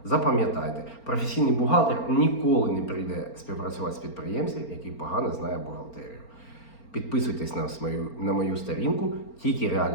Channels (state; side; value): late; right; 4.4 ms